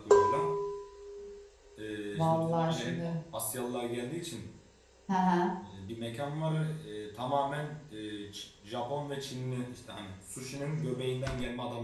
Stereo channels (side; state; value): both; identical; correlation 1.00